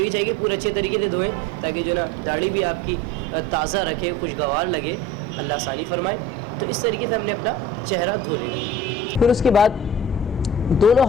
चाहिए पूरे अच्छे तरीके से धोएं ताकि जो ना दाढ़ी भी आपकी ताज़ा रखे, खुशगवार लगे, अल्लाह आसानी फरमाए। तो इस तरीके से हमने अपना चेहरा धो लेना। फिर उसके बाद दोनों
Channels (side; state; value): both; normal; correlation 0.41